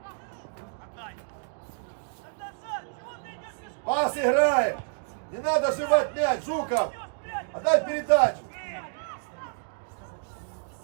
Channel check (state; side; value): silent; left; digital silence